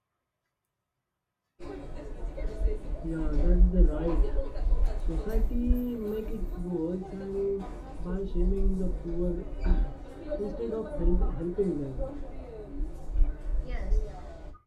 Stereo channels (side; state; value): both; identical; correlation 1.00